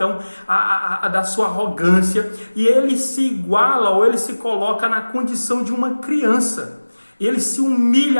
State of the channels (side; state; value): both; inverted; correlation -1.00